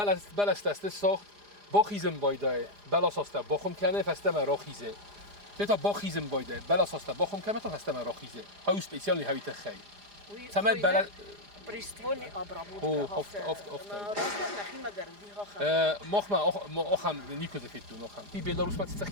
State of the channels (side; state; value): left; late; 4.9 ms